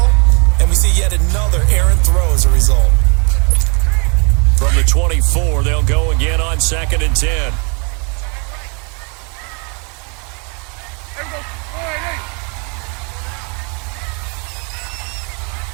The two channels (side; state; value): left; quieter; 35.0 dB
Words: and we see yet another errant throw as a result. From the 24, they'll go again on 2nd and 10.